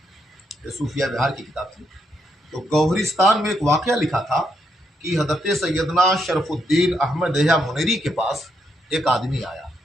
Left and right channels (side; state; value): both; normal; correlation 0.78